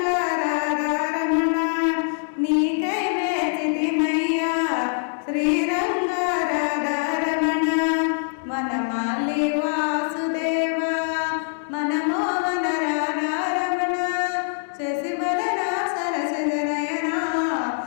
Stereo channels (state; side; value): silent; right; 63 dB below the other